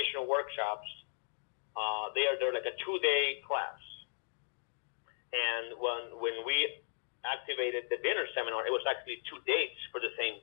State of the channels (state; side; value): silent; right; digital silence